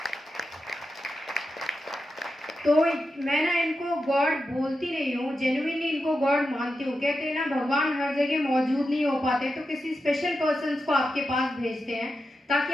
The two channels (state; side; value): normal; both; correlation 0.89